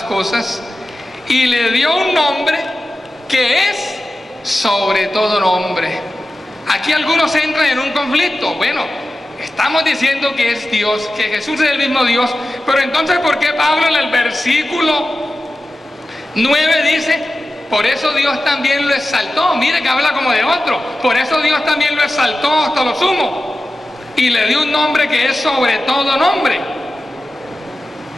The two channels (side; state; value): both; normal; correlation 0.94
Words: cosas y le dio un nombre que es sobre todo nombre. Aquí algunos entran en un conflicto. Bueno, estamos diciendo que es Dios, que Jesús es el mismo Dios, pero entonces ¿por qué Pablo en el versículo 9 dice: por eso Dios también lo exaltó? Mire que habla como de otro. Por eso Dios también lo exaltó hasta lo sumo y le dio un nombre que es sobre todo nombre.